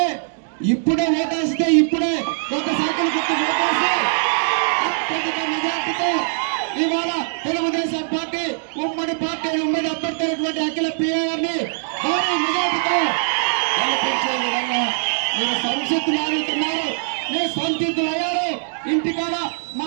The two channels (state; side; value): silent; left; digital silence